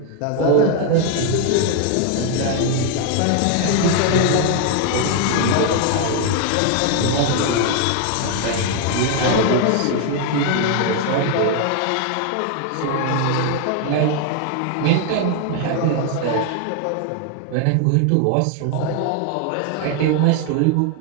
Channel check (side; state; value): both; different; correlation 0.00